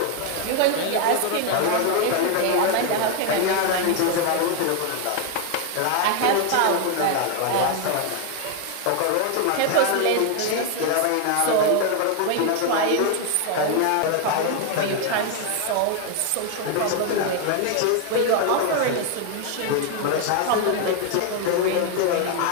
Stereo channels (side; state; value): both; different; correlation 0.01